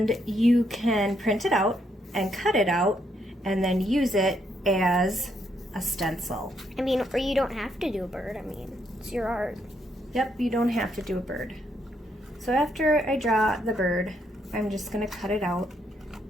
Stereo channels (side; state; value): both; normal; correlation 0.75